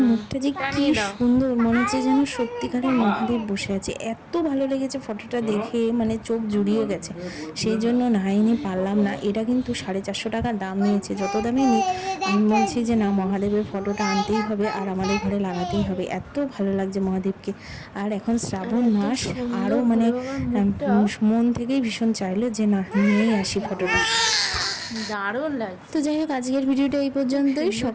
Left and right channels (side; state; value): both; identical; correlation 1.00